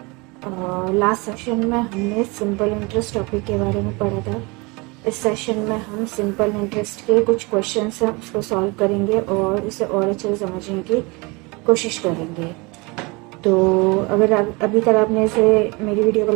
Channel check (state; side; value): quieter; left; 26.8 dB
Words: Last session में हमने simple interest topic के बारे में पढ़ा था। इस सेशन में हम सिंपल इंटरेस्ट के कुछ क्वेश्चंस हैं उसको सॉल्व करेंगे और इसे और अच्छे से समझने की कोशिश करेंगे। तो अगर अभी तक आपने इसे मेरी वीडियो को